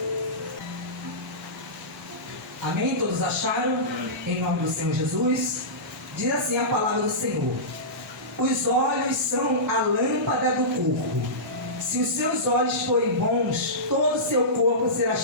Amém? Todos acharam? Em nome do Senhor Jesus. Diz assim a palavra do Senhor: os olhos são a lâmpada do corpo. Se os seus olhos forem bons, todo o seu corpo será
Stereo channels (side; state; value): both; normal; correlation -0.18